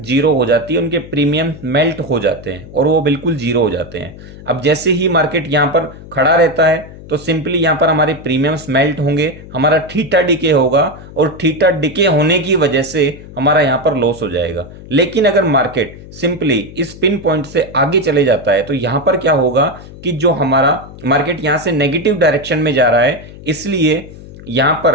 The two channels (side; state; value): left; noise; hum, 16 dB below the sound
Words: हो जाती है, उनके प्रीमियम मेल्ट हो जाते हैं और वो बिल्कुल जीरो हो जाते हैं। अब जैसे ही मार्केट यहां पर खड़ा रहता है तो सिंपली यहां पर हमारे प्रीमियम्स मेल्ट होंगे, हमारा थीटा डिके होगा और थीटा डिके होने की वजह से हमारा यहां पर लॉस हो जाएगा। लेकिन अगर मार्केट सिंपली इस पिन पॉइंट से आगे चले जाता है तो यहां पर क्या होगा कि जो हमारा मार्केट यहां से नेगेटिव डायरेक्शन में जा रहा है, इसलिए यहां